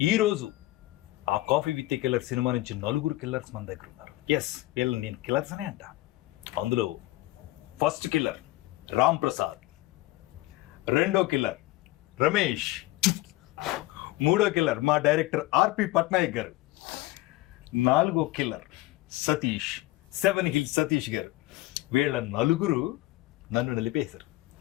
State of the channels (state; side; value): quieter; right; 18.3 dB